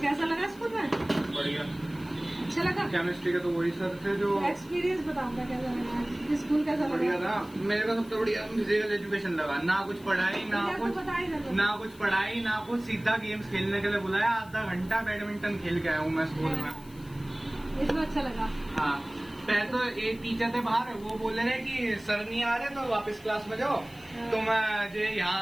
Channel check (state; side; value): noise; left; hiss, 24 dB below the sound